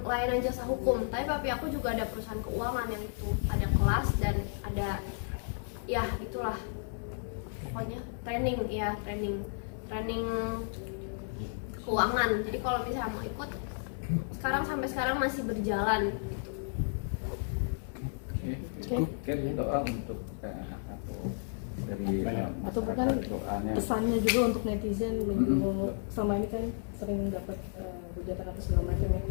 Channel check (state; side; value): silent; right; digital silence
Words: layanan jasa hukum, tapi papi aku juga ada perusahaan keuangan yang itu ada kelas dan ada ya itulah pokoknya training keuangan. Jadi kalau misalnya mau ikut sampai sekarang masih berjalan gitu. Kan doa untuk dari atau bukan doanya. pesannya juga untuk netizen selama ini kan sering dapat hujatan atau segala macam ya,